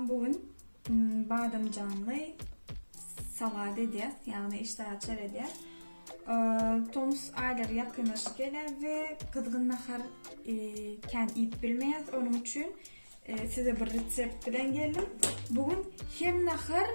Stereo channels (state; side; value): inverted; both; correlation -1.00